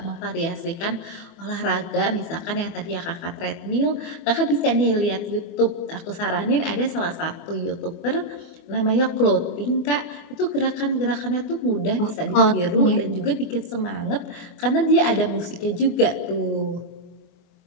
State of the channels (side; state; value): right; late; 24 ms